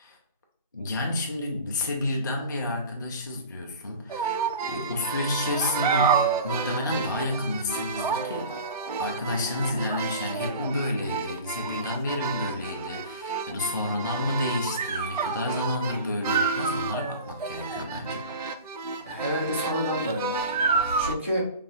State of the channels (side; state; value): both; inverted; correlation -0.38